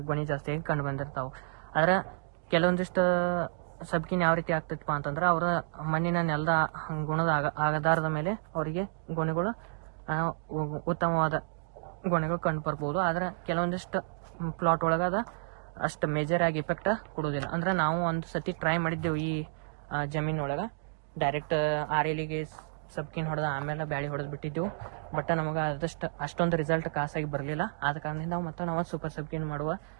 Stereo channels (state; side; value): silent; left; digital silence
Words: ಗೊನೆ ಜಾಸ್ತಿಯಾಗಿ ಕಂಡು ಬಂದಿರ್ತಾವೆ. ಆದ್ರೆ ಕೆಲವೊಂದಿಷ್ಟು ಸಬ್ಕಿನ ಯಾವ ರೀತಿ ಆಗ್ತೈತಪ್ಪ ಅಂತಂದ್ರೆ ಅವರ ಮಣ್ಣಿನ ನೆಲದ ಗುಣದ ಆಧಾರದ ಮೇಲೆ ಅವರಿಗೆ ಗೊನೆಗಳು ಉತ್ತಮವಾದ ಗೊನೆಗಳು ಕಂಡು ಬರ್ಬೋದು. ಆದ್ರೆ ಕೆಲವೊಂದಿಷ್ಟು ಪ್ಲಾಟ್ ಒಳಗದ ಅಷ್ಟು ಮೇಜರ್ ಆಗಿ ಇಫೆಕ್ಟ್ ಕೊಡೋದಿಲ್ಲ. ಅಂದ್ರೆ ನಾವು ಒಂದು ಸತಿ ಟ್ರೈ ಮಾಡಿದ್ದೆವು ಈ ಜಮೀನೊಳಗೆ. ಡೈರೆಕ್ಟ್ 6 ಎಲಿಗೆ ಸಬ್ಕಿನ್ ಹೊಡೆದ ಆಮೇಲೆ ಬ್ಯಾಳಿ ಹೊಡೆದು ಬಿಟ್ಟಿದ್ದೆವು. ಬಟ್ ನಮಗೆ ಅಷ್ಟೊಂದು ರಿಸಲ್ಟ್ ಖಾಸಾಗಿ ಬರಲಿಲ್ಲ. ಆದ ಕಾರಣದಿಂದ ನಾವು ಸೂಪರ್ ಸಬ್ಕಿನ್ ಮಾಡುವ